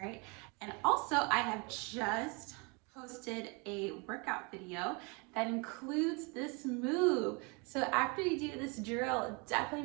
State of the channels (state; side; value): quieter; left; 30.7 dB